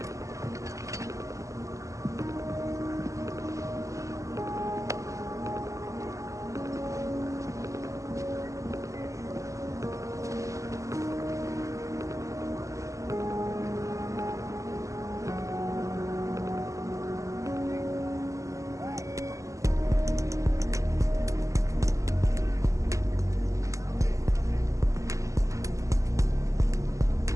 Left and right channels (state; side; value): late; left; 0.15 ms